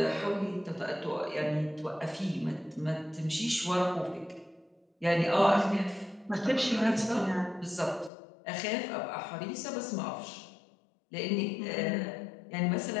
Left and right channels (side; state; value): right; drops out; at 8.1 s